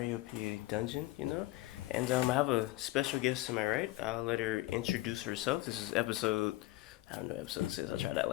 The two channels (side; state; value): right; quieter; 18.2 dB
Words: dungeon, and I have a special guest to my right. I'll let her introduce herself. This is episode. I don't know what episode this is. I'll try to act